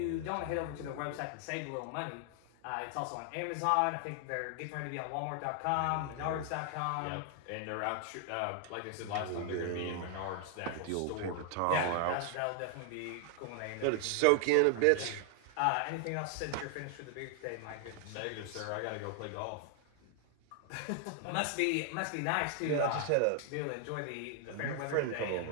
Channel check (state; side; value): different; both; correlation 0.00